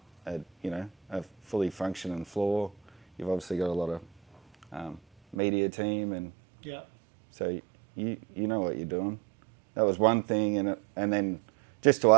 fully functioning floor. You've obviously got a lot of media team, and Yeah. so you know what you're doing. That was one thing, and then just to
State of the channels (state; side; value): drops out; left; at 5.4 s